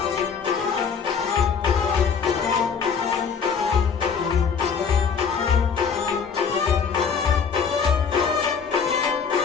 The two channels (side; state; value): right; quieter; 6.2 dB